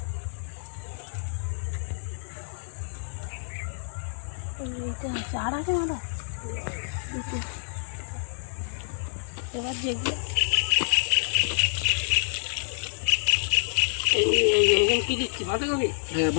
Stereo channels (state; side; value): silent; right; digital silence